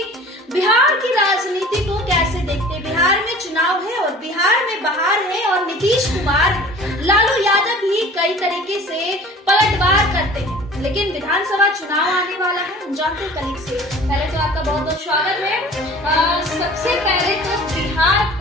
बिहार की राजनीति को कैसे देखते हैं। बिहार में चुनाव है और बिहार में बहार है और नीतीश कुमार, लालू यादव भी कई तरीके से पलटवार करते हैं, लेकिन विधानसभा चुनाव आने वाला है। हम जानते हैं कलीग से। पहले तो आपका बहुत बहुत स्वागत है। सबसे पहले तो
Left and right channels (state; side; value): normal; both; correlation 0.45